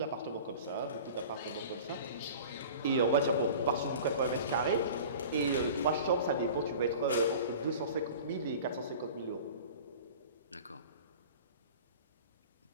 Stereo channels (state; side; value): inverted; both; correlation -0.40